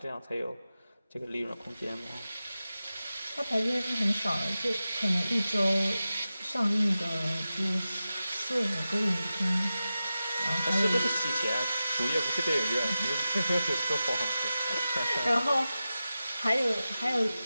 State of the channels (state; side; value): inverted; both; correlation -0.93